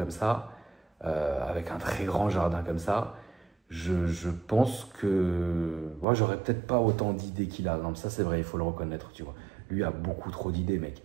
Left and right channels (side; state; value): left; drops out; at 6.1 s